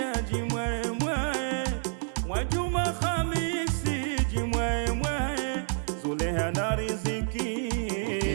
jimwemwe, Mwajuma Khamisi jimwemwe, Zuleha na Riziki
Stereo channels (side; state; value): left; silent; digital silence